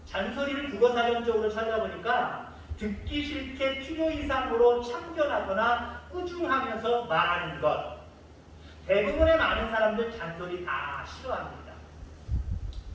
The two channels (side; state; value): both; identical; correlation 1.00